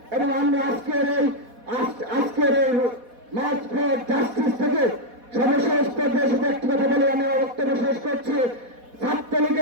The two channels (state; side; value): late; left; 4.1 ms